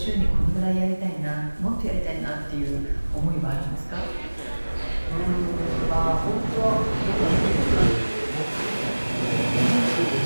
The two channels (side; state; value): both; inverted; correlation -1.00